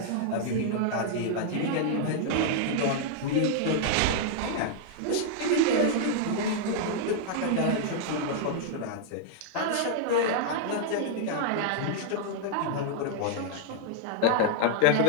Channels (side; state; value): both; different; correlation -0.01